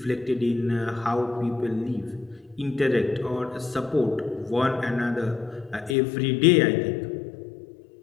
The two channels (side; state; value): right; drops out; at 6.0 s